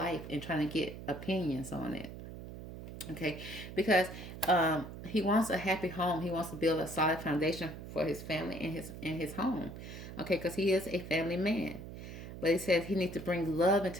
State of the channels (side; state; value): right; noise; hum, 11 dB below the sound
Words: and trying to get opinions on it. Okay, because he wants a happy home. He wants to build a solid foundation for his family in his home. Okay, because he is a family man. But he says he needs to bring love